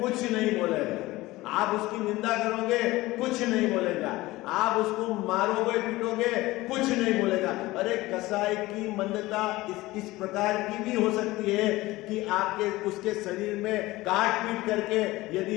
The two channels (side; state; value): right; quieter; 19.0 dB